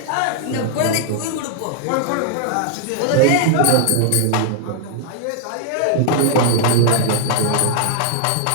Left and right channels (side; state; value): both; different; correlation -0.01